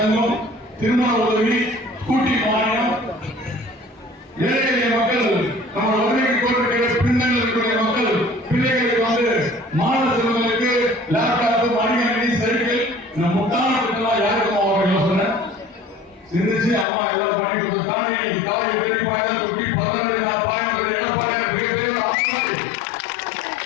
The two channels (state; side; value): drops out; right; at 16.9 s